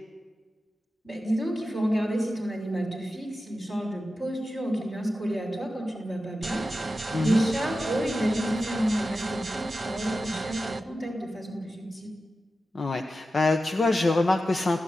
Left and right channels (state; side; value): normal; both; correlation 0.92